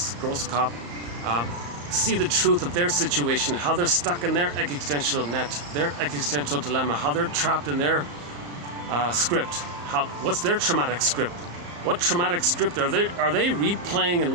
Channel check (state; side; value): late; left; 34 ms